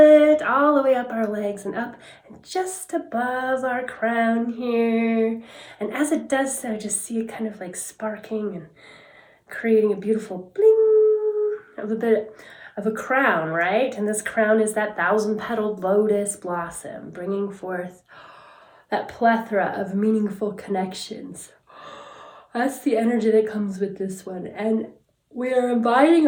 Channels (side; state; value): both; identical; correlation 1.00